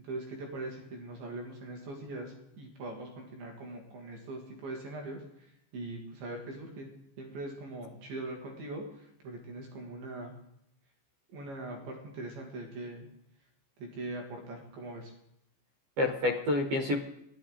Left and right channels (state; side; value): late; left; 15 ms